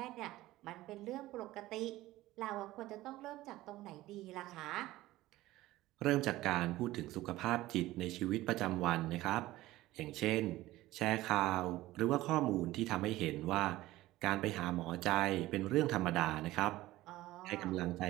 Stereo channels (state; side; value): quieter; left; 16.9 dB